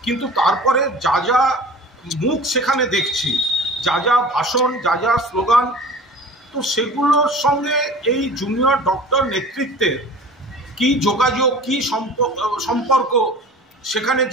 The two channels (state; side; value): normal; both; correlation 0.41